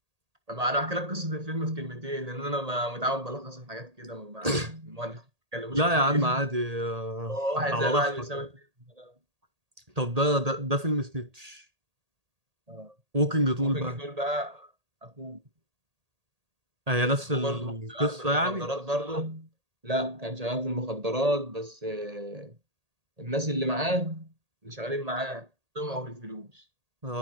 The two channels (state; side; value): late; left; 1.8 ms